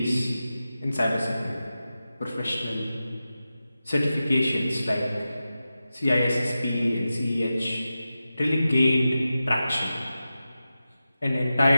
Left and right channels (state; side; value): inverted; both; correlation -0.93